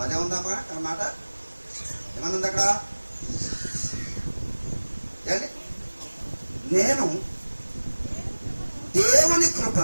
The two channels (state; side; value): inverted; both; correlation -1.00